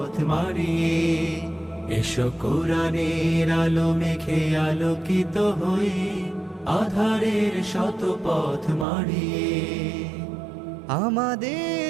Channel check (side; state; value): left; drops out; at 8.8 s